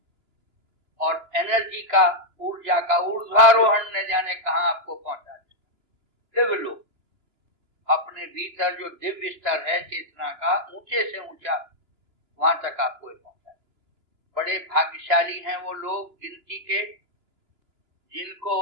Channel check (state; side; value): late; left; 2.9 ms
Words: और एनर्जी का, ऊर्जा का ऊर्ध्वारोहण न जाने कहां आपको पहुंचा देता। दिव्य लोग, अपने भीतर जो दिव्य स्तर है चेतना का, ऊंचे से ऊंचा वहां तक आपको पहुंचा। बड़े भाग्यशाली हैं वो लोग गिनती के, जिनको